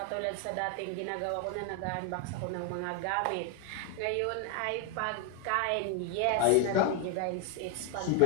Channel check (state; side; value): different; both; correlation 0.00